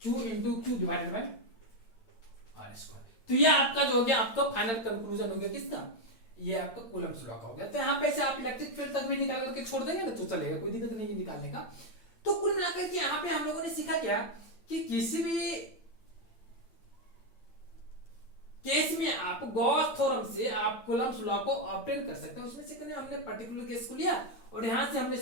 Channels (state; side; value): late; right; 8.8 ms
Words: Q into Q divided by R square. तो ये आपका जो हो गया आपका फाइनल कंक्लूजन हो गया किसका, ये आपका कूलम्ब्स लॉ का हो गया। तो यहाँ पे से आप इलेक्ट्रिक फील्ड तक भी निकाल करके छोड़ देंगे ना तो चलेगा, कोई दिक्कत नहीं है निकालने का। तो कुल मिलाकर के यहाँ पे हम लोगों ने सीखा क्या कि किसी भी केस में आप गॉस थ्योरम से आप कूलम्ब्स लॉ को ऑब्टेन कर सकते हैं। उसमें से हमने पर्टिकुलर केस को लिया और यहां से हमने